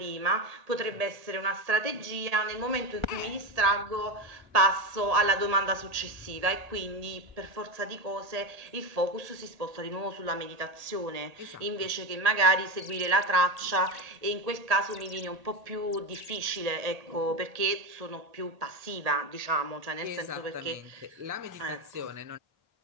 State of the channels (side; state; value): left; late; 1.8 ms